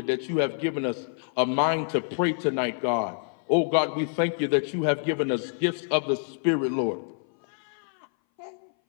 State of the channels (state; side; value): silent; right; 59 dB below the other